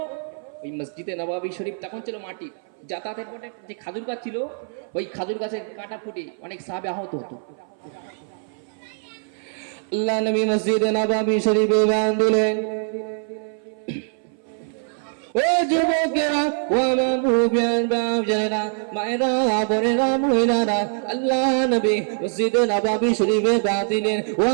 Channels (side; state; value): left; silent; 59 dB below the other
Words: ওই মসজিদে নববী শরীফ তখন ছিল মাটি, যাতায়াতের পথে যে খাজুর গাছ ছিল, ওই খাজুর গাছের কাঁটা ফুটে অনেক সাহাবী আহত হতো। আল্লাহ নবী মসজিদে নববী শরীফে বাং দিলেন। ও যুবকেরা, ও আমার মুরব্বিয়ান বাপজানেরা, মায়েরা, বোনেরা, মহিলারা, আল্লাহ নবী মসজিদে নববী শরীফে বাং দিলেন। ও